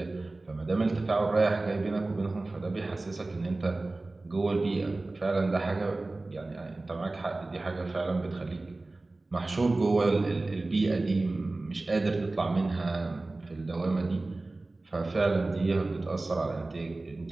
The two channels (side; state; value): left; quieter; 3.1 dB